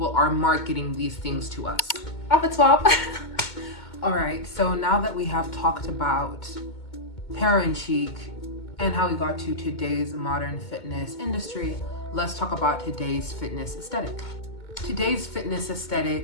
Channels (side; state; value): right; late; 2.2 ms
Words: are marketing these things to us. Off it swap. All right, so now that we have talked about Parent Chic and how we got to today's modern fitness industry, let's talk about today's fitness aesthetic. Today's fitness